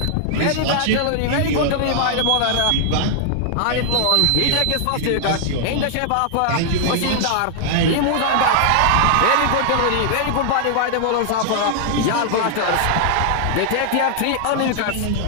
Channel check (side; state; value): both; different; correlation -0.01